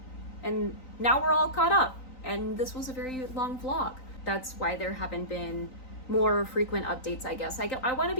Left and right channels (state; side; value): late; right; 3.9 ms